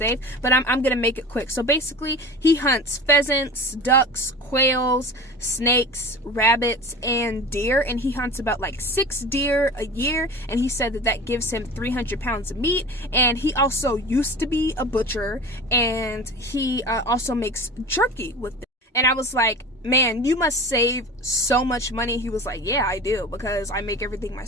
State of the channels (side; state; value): both; normal; correlation 0.35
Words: but I'm gonna make it quick. So basically he hunts pheasants, ducks, quails, snakes, rabbits, and deer, and he hunts about like 6 deer a year, and he said that that gives him 300 pounds of meat. And he also used to be a butcher, and he also makes jerky with it. And I was like, man, you must save so much money. He was like, yeah, I do, because I make everything